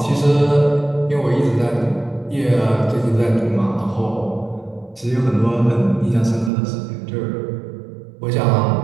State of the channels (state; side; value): drops out; left; at 6.5 s